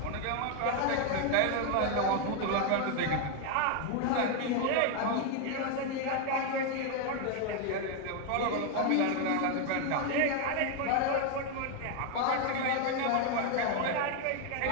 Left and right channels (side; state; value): both; different; correlation 0.01